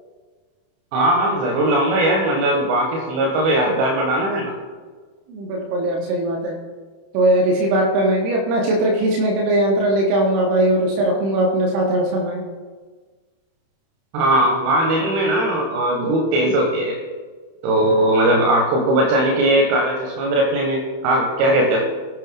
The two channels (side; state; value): left; late; 31 ms